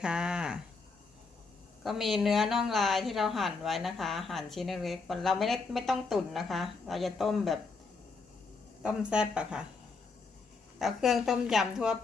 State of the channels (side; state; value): right; quieter; 4.3 dB